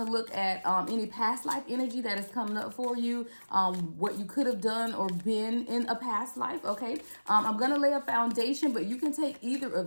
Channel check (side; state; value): both; inverted; correlation -1.00